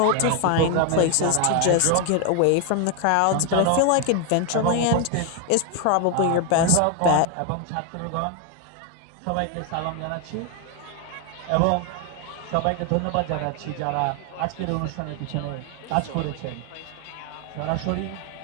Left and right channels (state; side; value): different; both; correlation 0.01